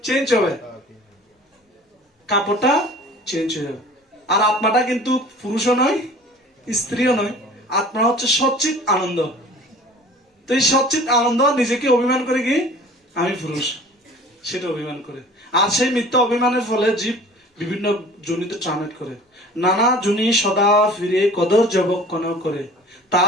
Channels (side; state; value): both; normal; correlation 0.46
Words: চেঞ্জ হবে, কাপড়টা চেঞ্জ হয়ে যাবে। আর আত্মাটা কিন্তু পুরুষও নয়, স্ত্রীও নয়, আত্মা হচ্ছে সচ্চিত আনন্দ। তো এই সচ্চিত আনন্দ নিজেকে অভিমান করে কি আমি পুরুষ, সেটা অভিমান করে। আর সেই মিথ্যা অভিমানের ফলে জীব বিভিন্ন জনিতে ট্রান্সলেট করে, নানা জনি সদা ফিরে কদর জবক্ষণ করে,